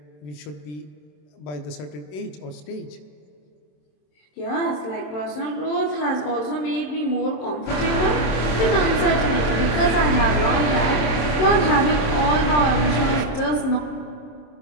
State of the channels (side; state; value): right; late; 27 ms